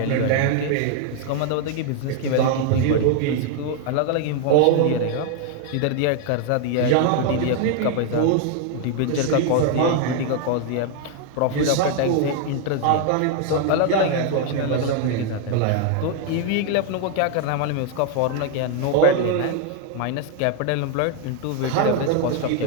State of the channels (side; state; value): both; different; correlation 0.00